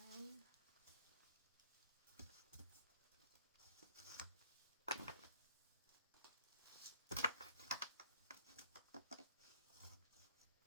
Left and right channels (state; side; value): inverted; both; correlation -0.59